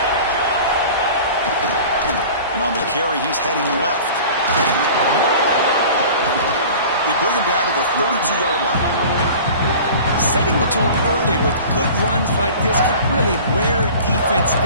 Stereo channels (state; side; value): inverted; both; correlation -0.41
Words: And on the carry, he's heading left. They bring him down to the 32-yard line. Setting the tone early with good runs like this can really wear defense